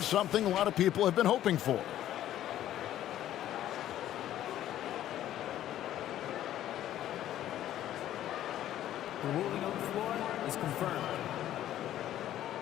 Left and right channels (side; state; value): right; quieter; 12.4 dB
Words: something a lot of people have been hoping for. The ruling on the floor is confirmed.